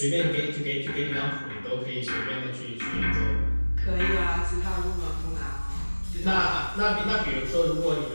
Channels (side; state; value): both; inverted; correlation -1.00